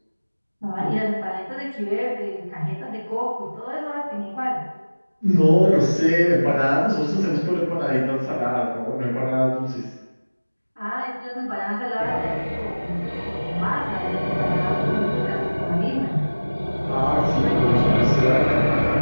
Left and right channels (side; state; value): both; inverted; correlation -1.00